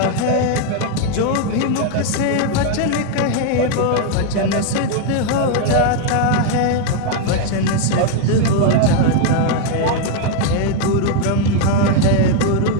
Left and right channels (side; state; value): both; different; correlation 0.00